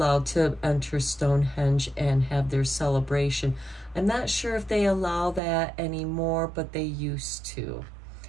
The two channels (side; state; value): left; drops out; at 5.4 s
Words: to enter Stonehenge and have their celebration. I'm not sure if they allow that anymore, but they used to.